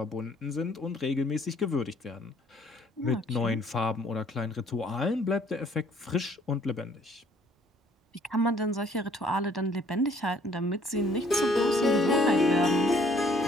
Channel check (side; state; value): both; normal; correlation 0.61